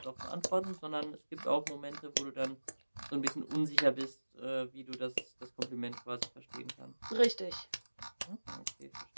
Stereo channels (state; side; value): inverted; both; correlation -1.00